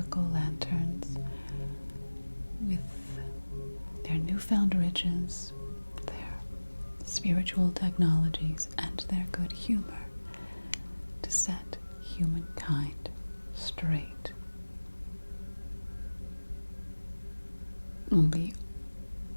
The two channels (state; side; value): inverted; both; correlation -1.00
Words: lanterns with their newfound riches, their spiritual technologies, and their good humor to set humankind straight. The